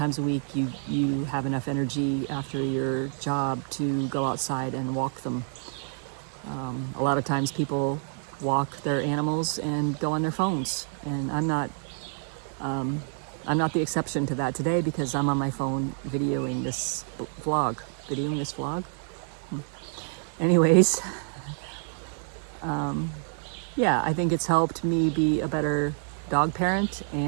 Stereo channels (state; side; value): silent; left; 59 dB below the other